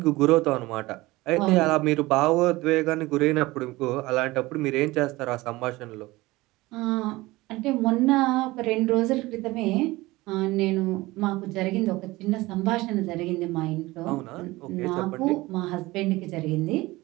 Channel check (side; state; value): left; quieter; 20.1 dB